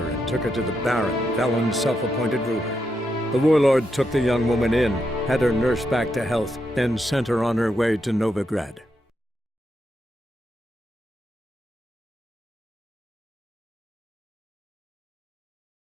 and took her to the Baron, Velen's self-appointed ruler. The warlord took the young woman in, had her nursed back to health, then sent her on her way to Novigrad.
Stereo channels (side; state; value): both; normal; correlation 0.83